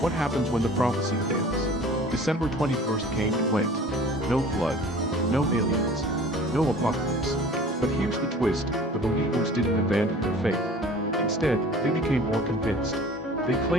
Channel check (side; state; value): both; normal; correlation 0.45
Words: happens when the prophecy fails? December 21st came and went. No flood, no aliens, no apocalypse. But here's the twist: the believers didn't abandon their faith. Instead, they became more convinced. They